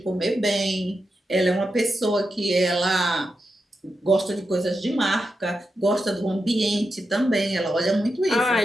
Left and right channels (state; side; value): normal; both; correlation 0.88